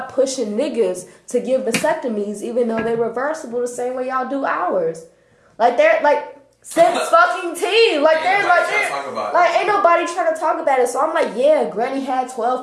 pushing niggas to give vasectomies, even though they're reversible the same way y'all do ours. Like, they're like, since fucking tea. Like, ain't nobody trying to talk about it. So I'm like, yeah, Granny had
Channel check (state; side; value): identical; both; correlation 1.00